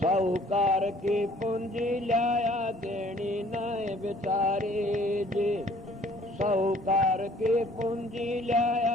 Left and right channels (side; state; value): both; normal; correlation 0.56